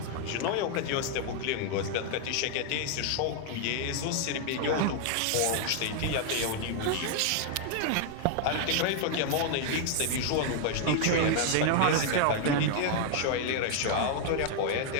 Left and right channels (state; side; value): different; both; correlation 0.00